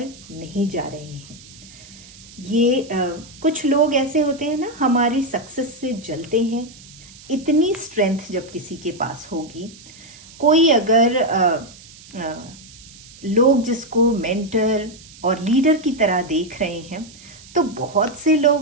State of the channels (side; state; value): right; noise; hiss, 20 dB below the sound